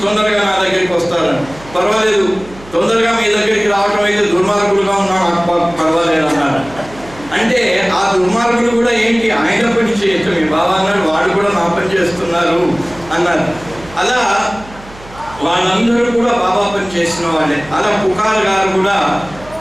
తొందరగా నా దగ్గరికి వస్తారని. పర్వాలేదు, తొందరగా మీ దగ్గరికి రావటం అయితే దుర్మార్గులుగా ఉన్నా నాకు పర్వాలేదు అన్నారు. అంటే ఆ దుర్మార్గులు కూడా ఏంటి, ఆయన పని చేయొచ్చు, మీ బాబా అన్నాడు, వాడు కూడా నా పని చేస్తున్నారు అన్నారు. అలా వాళ్ళందరూ కూడా బాబా పని చేసిన వాళ్ళే. అలా పుకార్ గారు కూడా,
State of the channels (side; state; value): right; noise; hum, 19 dB below the sound